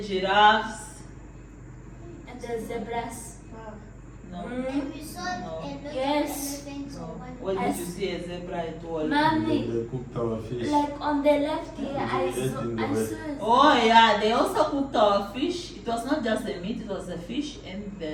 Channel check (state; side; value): identical; both; correlation 1.00